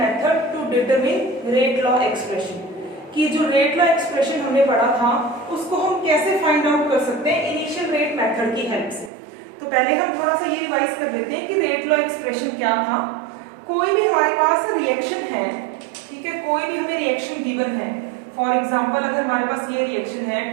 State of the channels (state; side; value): drops out; left; at 9.1 s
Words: to determine rate law expression. कि जो रेट लॉ एक्सप्रेशन हमने पढ़ा था उसको हम कैसे फाइंड आउट कर सकते हैं इनिशियल रेट मेथड की हेल्प से। तो पहले हम थोड़ा सा ये रिवाइज कर लेते हैं कि रेट लॉ एक्सप्रेशन क्या था। कोई भी हमारे पास रिएक्शन है, ठीक है, कोई भी हमें रिएक्शन गिवन है। फॉर एग्जाम्पल अगर हमारे पास ये रिएक्शन है